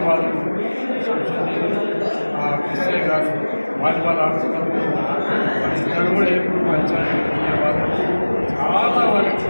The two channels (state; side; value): inverted; both; correlation -1.00